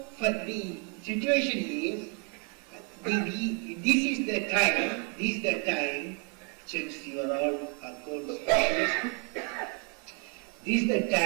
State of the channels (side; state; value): left; quieter; 38.0 dB